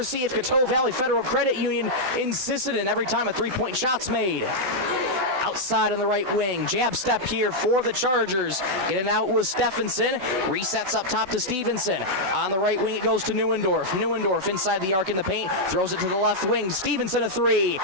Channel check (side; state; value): left; late; 16 ms